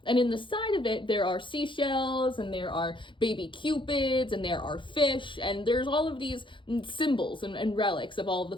and in the side of it, there are seashells, and there are baby cupids, and there are fish, and there's all of these symbols and relics of all of the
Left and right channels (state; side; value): late; right; 0.24 ms